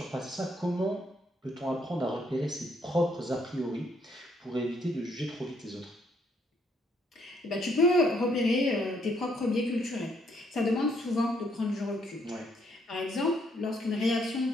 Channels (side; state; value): both; normal; correlation 0.70